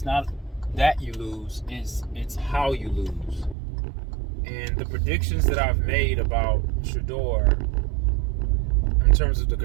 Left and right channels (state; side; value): drops out; left; at 3.6 s